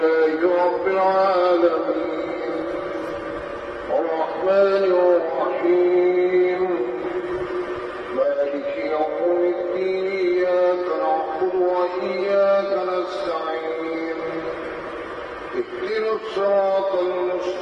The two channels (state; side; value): identical; both; correlation 1.00